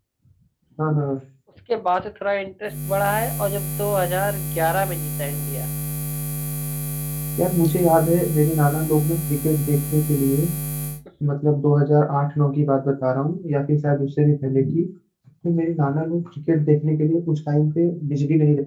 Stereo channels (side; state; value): both; identical; correlation 1.00